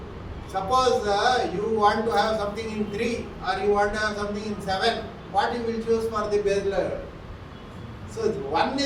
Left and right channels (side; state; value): both; identical; correlation 1.00